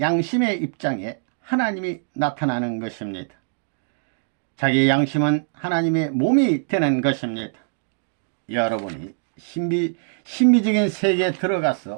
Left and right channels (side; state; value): left; silent; digital silence